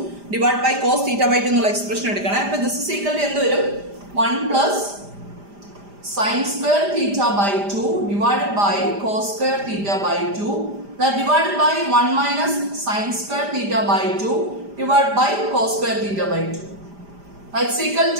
divided by cos theta by 2 എന്നുള്ള expression എടുക്കണം. അപ്പോൾ this is equal to എന്ത് വരും? 1 plus sin square theta by 2 divided by cos square theta by 2 that divided by 1 minus sin square theta by 2 divided by cos square theta by 2. That's equal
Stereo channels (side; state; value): left; late; 5.0 ms